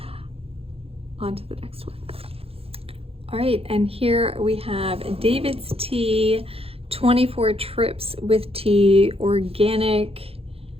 on to the next one. All right, and here we have David's Tea, 24 trips with tea, organic.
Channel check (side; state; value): left; late; 0.28 ms